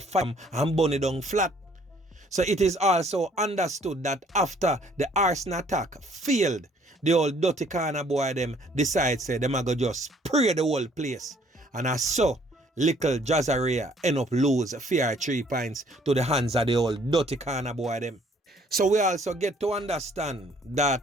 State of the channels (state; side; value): normal; both; correlation 0.61